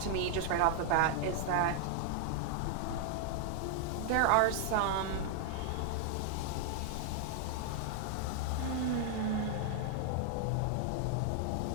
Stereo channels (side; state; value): both; different; correlation 0.00